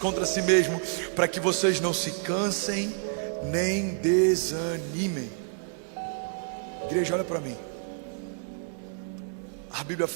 si mesmo, para que vocês não se cansem nem desanimem. Igreja, olha para mim. A Bíblia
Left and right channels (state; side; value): silent; left; 59 dB below the other